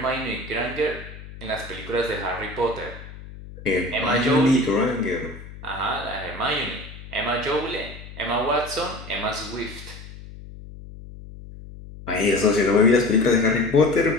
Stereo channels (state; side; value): noise; left; hum, 15 dB below the sound